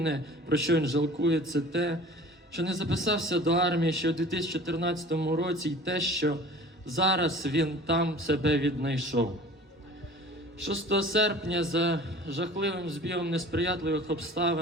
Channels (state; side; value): normal; both; correlation 0.43